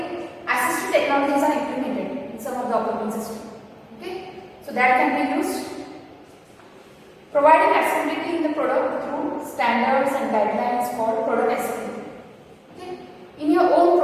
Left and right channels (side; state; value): both; identical; correlation 1.00